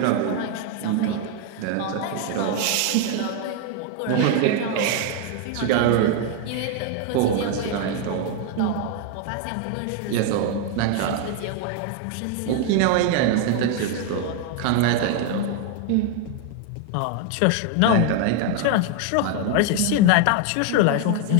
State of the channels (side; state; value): both; different; correlation 0.01